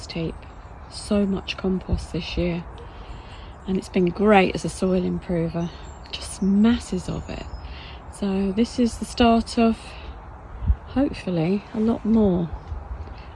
heap. So much compost this year. And it's been great as a soil improver. Just masses of it. So this is the start of, hopefully, a lot more.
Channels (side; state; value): both; identical; correlation 1.00